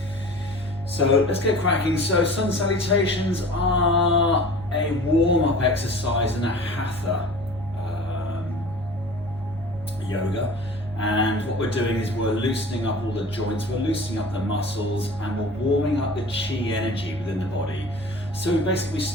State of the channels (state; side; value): normal; both; correlation 0.41